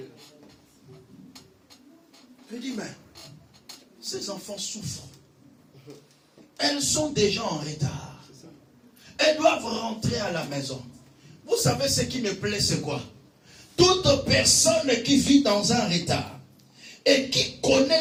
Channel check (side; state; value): both; identical; correlation 1.00